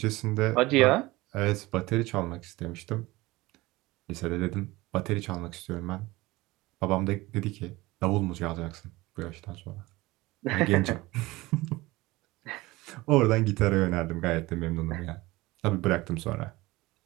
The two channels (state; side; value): quieter; left; 20.3 dB